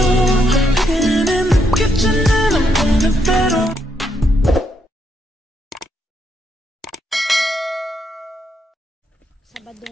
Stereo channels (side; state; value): both; normal; correlation 0.78